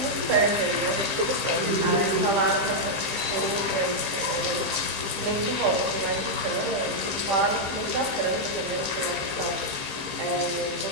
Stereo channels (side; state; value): left; late; 15 ms